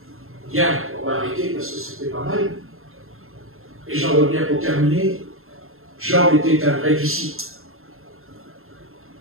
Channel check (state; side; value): late; left; 0.61 ms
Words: Bien, on va arrêter parce que c'était pas mal. Et j'en reviens pour terminer. Jean était un vrai disciple.